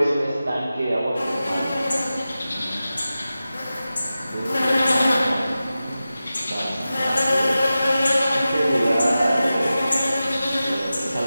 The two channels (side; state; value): both; inverted; correlation -0.94